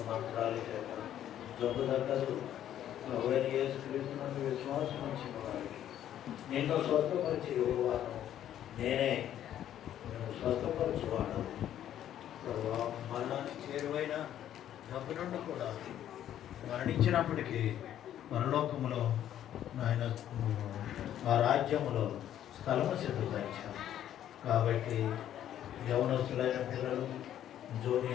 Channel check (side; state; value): right; quieter; 11.1 dB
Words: మంత్రాల చేత జబ్బు తగ్గదు. ప్రభువైన యేసుక్రీస్తునందు విశ్వాసం ఇచ్చిన వారికి నిన్ను స్వస్థపరిచి యువవాను నేనే, నేను స్వస్థపరచువాడు ప్రభు. మరణానికి చేరువైన జబ్బు నుండి కూడా మరణించినప్పటికీ పరలోకములో ఆయన ఆ రాజ్యములో స్థలము సిద్ధపరిచారు. కాబట్టి యవనస్తులైన పిల్లలు,